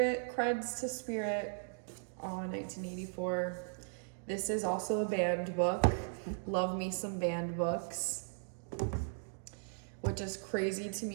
Creds to Spirit on 1984. This is also a banned book. Love me some banned books. Which is crazy to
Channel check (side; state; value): left; silent; digital silence